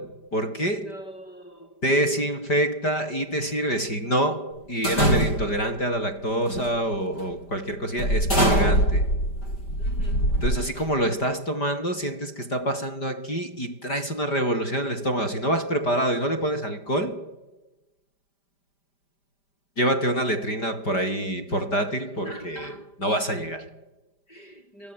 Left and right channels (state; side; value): late; right; 5.0 ms